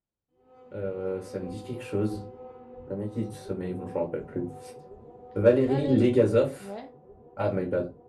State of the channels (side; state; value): both; identical; correlation 1.00